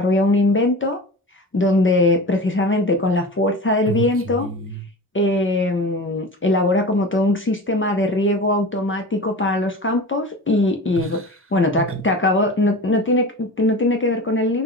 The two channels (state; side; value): normal; both; correlation 0.33